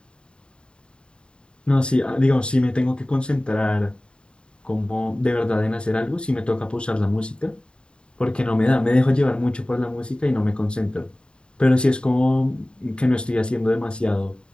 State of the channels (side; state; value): right; late; 0.052 ms